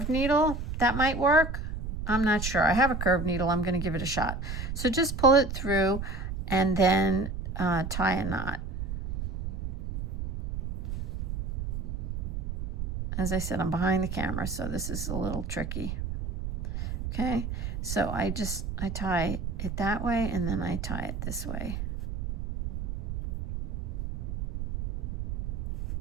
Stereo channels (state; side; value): noise; right; rumble, 5 dB below the sound